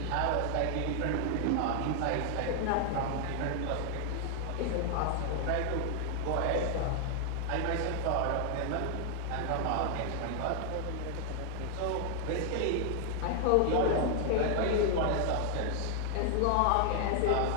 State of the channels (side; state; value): both; different; correlation 0.00